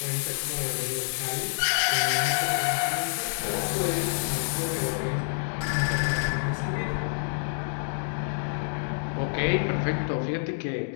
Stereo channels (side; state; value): right; silent; digital silence